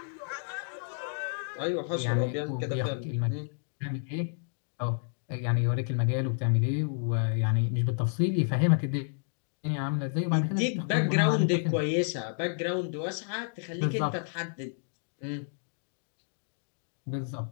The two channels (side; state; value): right; silent; digital silence